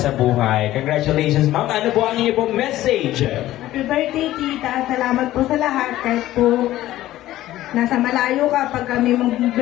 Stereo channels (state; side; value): quieter; right; 14.8 dB